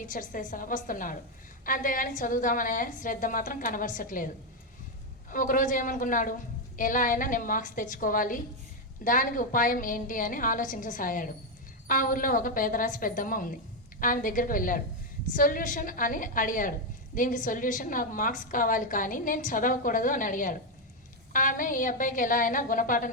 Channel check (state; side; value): normal; both; correlation 0.04